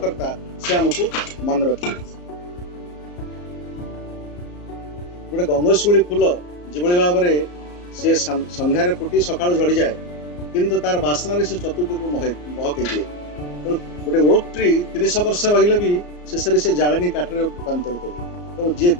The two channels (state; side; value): late; right; 34 ms